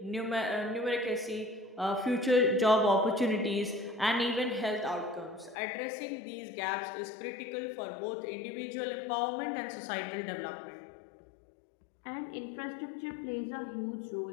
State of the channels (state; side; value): drops out; right; at 5.6 s